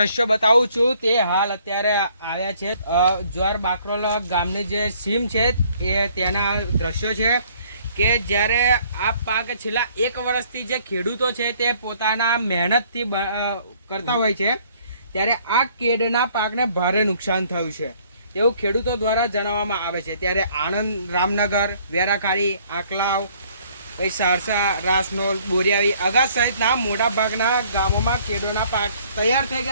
બતાવું છું તે હાલ અત્યારે આવ્યા છે જ્વાર બાકરોલ ગામની જે સીમ છે એ તેના દ્રશ્યો છે કે જ્યારે આ પાક છેલ્લા 1 વર્ષથી જે ખેડૂતો છે તે પોતાના મહેનતથી કરતા હોય છે ત્યારે આ કેડના પાકને ભારે નુકસાન થયું છે એવું ખેડૂતો દ્વારા જણાવવામાં આવે છે. ત્યારે આણંદ, રામનગર, વેરાકાળી, આકલાવ, પછી સારસા, રાસનોલ, બોરિયાવી, અગાસ સહિતના મોટા ભાગના ગામોમાં કેળોના પાક તૈયાર થઈ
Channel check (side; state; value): both; inverted; correlation -0.61